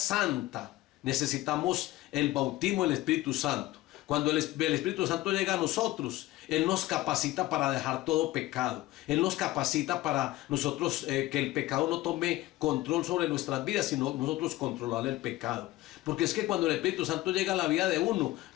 necesitamos el bautismo del Espíritu Santo. Cuando el Espíritu Santo llega a nosotros, Él nos capacita para dejar todo pecado. Él nos capacita para nosotros que el pecado no tome control sobre nuestras vidas, sino nosotros controlar el pecado. Porque es que cuando el Espíritu Santo llega a la vida de uno,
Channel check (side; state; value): right; quieter; 17.4 dB